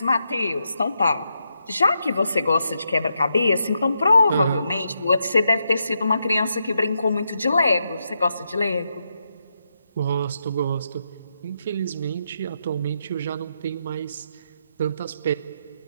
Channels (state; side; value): inverted; both; correlation -0.83